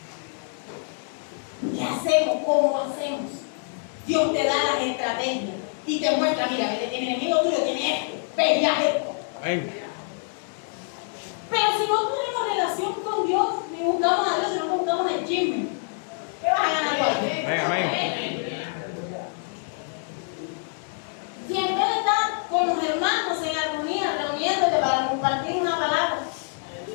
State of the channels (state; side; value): silent; right; 61 dB below the other